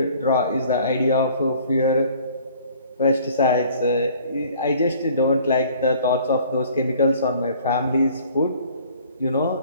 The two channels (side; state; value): both; inverted; correlation -0.53